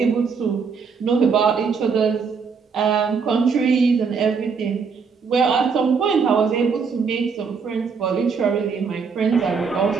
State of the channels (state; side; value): quieter; left; 5.6 dB